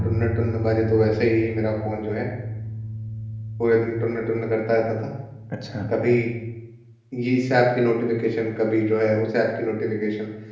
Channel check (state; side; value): identical; both; correlation 1.00